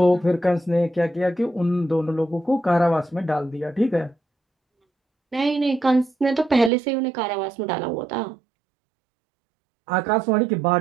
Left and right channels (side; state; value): left; drops out; at 6.7 s